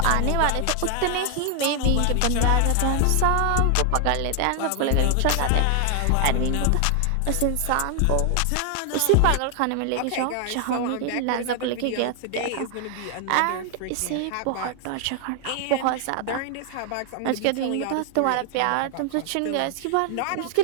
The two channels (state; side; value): different; both; correlation 0.00